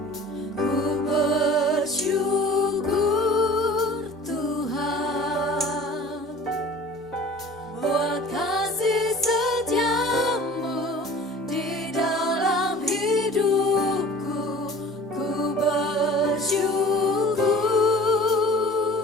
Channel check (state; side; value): normal; both; correlation 0.45